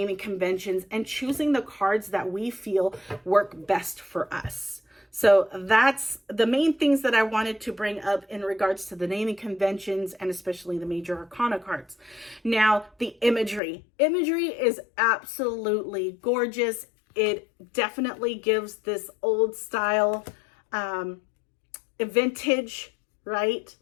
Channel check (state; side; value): drops out; right; at 13.6 s